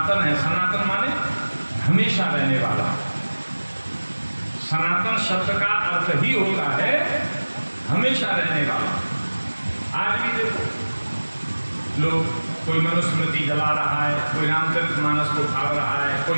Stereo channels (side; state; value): both; inverted; correlation -1.00